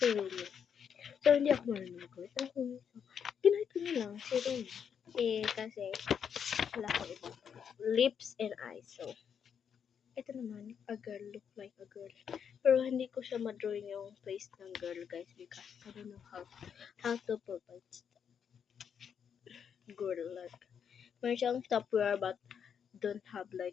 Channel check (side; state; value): right; quieter; 7.6 dB